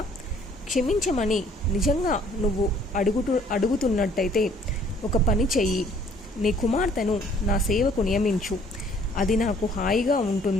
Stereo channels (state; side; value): normal; both; correlation 0.59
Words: క్షమించమని నిజంగా నువ్వు అడుగుతున్నట్టయితే ఒక పని చెయ్యి. నీ కుమార్తెను నా సేవకు నియమించు. అది నాకు హాయిగా